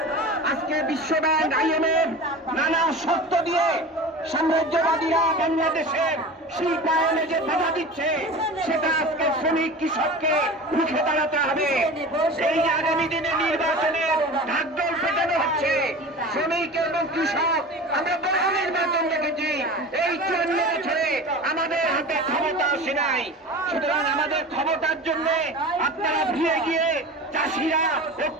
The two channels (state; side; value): normal; both; correlation 0.34